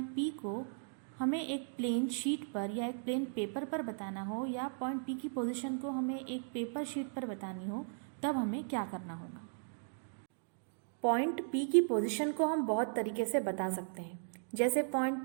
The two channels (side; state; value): left; silent; digital silence